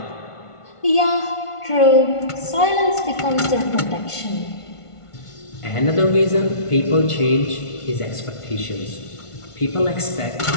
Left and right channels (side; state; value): right; late; 1.5 ms